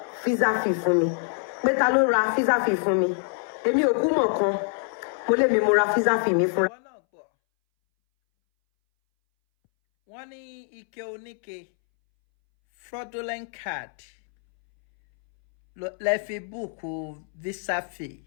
visa fee fún mi. Pé ta ló ra visa fee fún mi? Èmi ò kú mọ̀ kan. Mo lè mi mo ra visa fee mi fúnra. wọ́n ní ike oníke fraudulent card lẹ fi búùkù visa fee.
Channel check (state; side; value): silent; right; 62 dB below the other